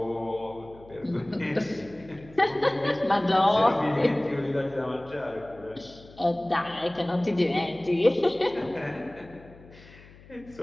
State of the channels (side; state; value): left; noise; hum, 22 dB below the sound